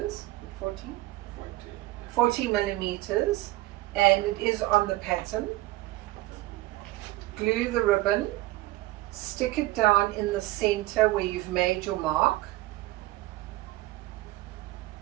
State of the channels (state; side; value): quieter; left; 18.2 dB